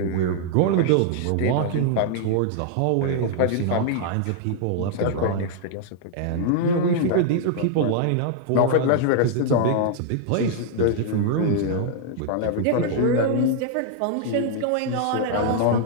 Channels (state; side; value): different; both; correlation -0.01